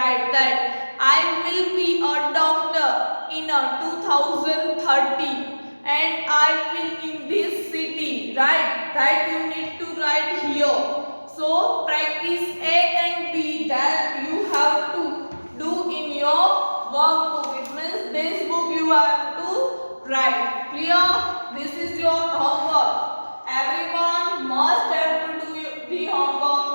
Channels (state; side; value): inverted; both; correlation -1.00